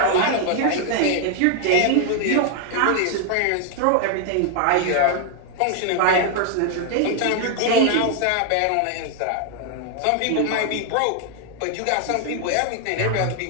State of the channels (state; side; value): different; both; correlation 0.00